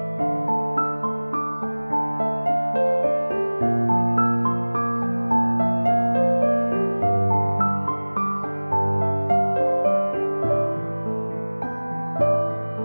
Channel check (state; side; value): inverted; both; correlation -1.00